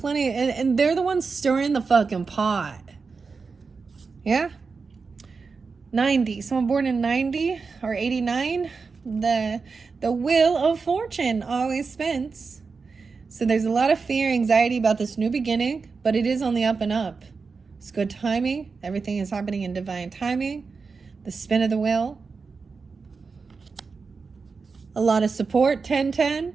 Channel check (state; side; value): quieter; left; 4.8 dB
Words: and they're the ones stirring the fucking pot. Yeah? 90. Someone born in 90 or 89. The wheel of fortune always spins. So there's a lot of fear, anxiety about this new beginning, but it is on the up and up. It's good timing. Everything is happening in divine timing. The spin of the wheel. A lot of support, 10-10.